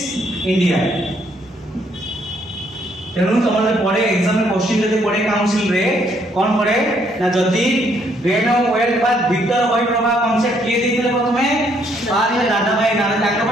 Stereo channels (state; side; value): normal; both; correlation 0.69